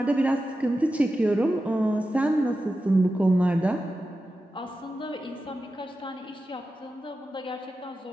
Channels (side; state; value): both; normal; correlation 0.92